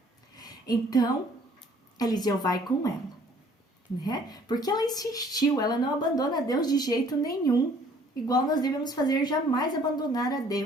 Então, Eliseu vai com ela, né? Porque ela insistiu, ela não abandona Deus de jeito nenhum, igual nós devemos fazer, jamais abandonar a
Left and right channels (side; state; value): both; normal; correlation 0.58